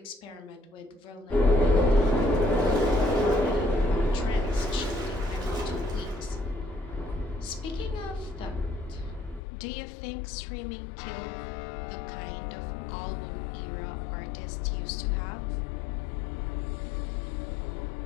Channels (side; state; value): right; drops out; at 9.4 s